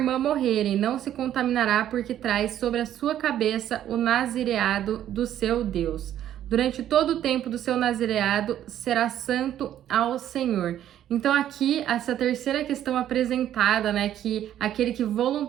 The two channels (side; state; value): left; quieter; 11.3 dB